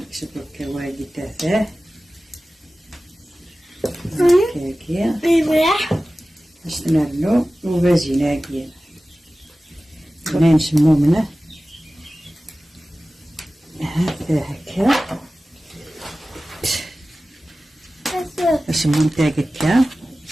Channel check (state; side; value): normal; both; correlation 0.96